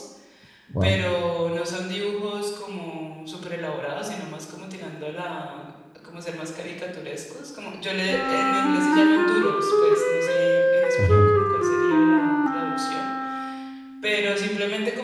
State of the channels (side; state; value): both; identical; correlation 1.00